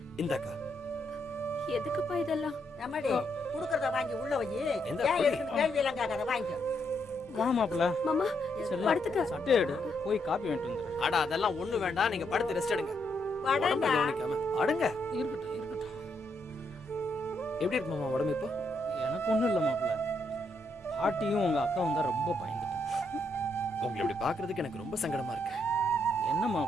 இந்த அக்கா எதுக்குப்பா இதெல்லாம்? நம்மடி குடுக்கறத வாங்கி உள்ள வை. ஏன் எதுக்கு கேள்வி எல்லாம் கேட்காத, வாங்கிக்கோ. மாமாப்ல மாமா படுத்துக்க. சட்டை எடு, போய் காப்பி வாங்கிட்டு வந்துடுறேன். அட அதெல்லாம் ஒண்ணு வேண்டாம், நீங்க படுத்து ரெஸ்ட் எடுங்க. படண்டா. கவனிக்காம அடுங்க. இருக்கட்டும் இருக்கட்டும். எப்படி இருக்கு மாமா உடம்பு இப்போ? எனக்கு ஒண்ணும் இல்ல மாப்ள. பாட்டியும் உங்க அக்காவும் தான் ரொம்ப பயந்துட்டாங்க. உங்களை இப்படி பாக்குறதுக்கு எனக்கு ரொம்ப சங்கடமா இருக்கு. என்ன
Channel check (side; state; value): both; normal; correlation 0.77